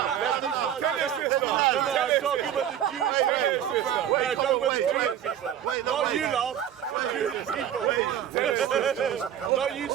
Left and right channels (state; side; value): quieter; left; 10.1 dB